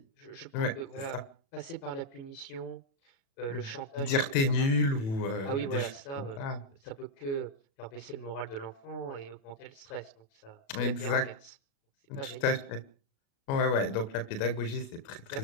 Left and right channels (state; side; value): late; right; 36 ms